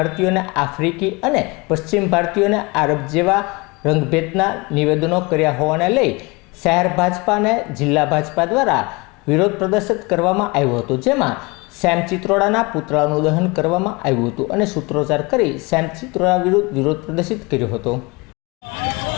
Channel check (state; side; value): quieter; right; 26.3 dB